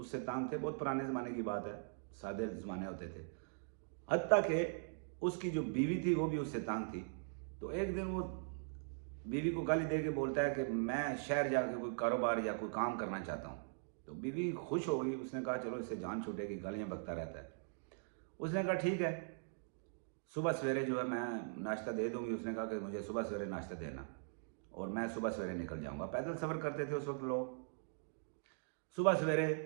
तंग थे। बहुत पुराने ज़माने की बात है, सादे ज़माने होते थे। हत्ता कि उसकी जो बीवी थी वो भी उससे तंग थी। तो एक दिन वो बीवी को गाली दे के बोलता है कि मैं शहर जाकर कोई कारोबार या कोई काम करना चाहता हूँ। तो बीवी खुश हो गई, उसने कहा चलो इससे जान छूटेगी, गालियाँ बकता रहता है। उसने कहा ठीक है, सुबह सवेरे जो है मैं नाश्ता दे दूंगी। उसने कहा कि मुझे सुबह सवेरे नाश्ता देना और मैं सुबह सवेरे निकल जाऊंगा। पैदल सफ़र करते थे उस वक्त लोग। सुबह सवेरे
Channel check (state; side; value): silent; left; digital silence